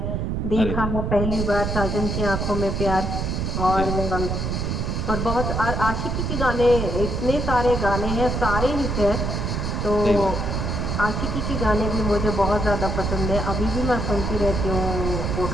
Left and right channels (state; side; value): noise; right; rumble, 1 dB below the sound